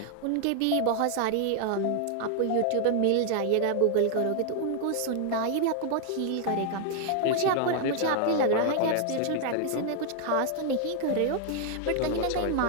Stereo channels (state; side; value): different; both; correlation 0.00